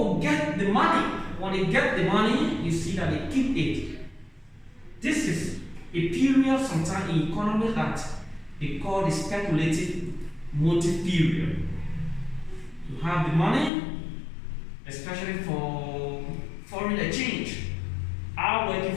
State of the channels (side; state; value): right; drops out; at 13.7 s